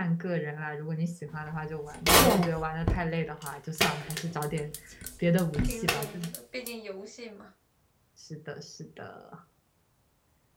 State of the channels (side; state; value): both; identical; correlation 1.00